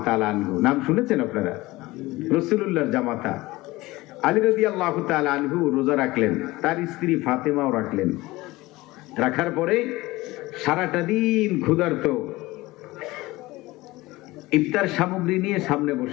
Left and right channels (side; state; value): right; quieter; 19.9 dB